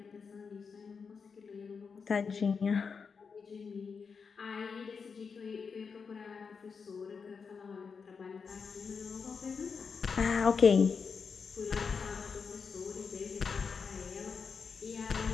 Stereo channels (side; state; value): right; quieter; 5.6 dB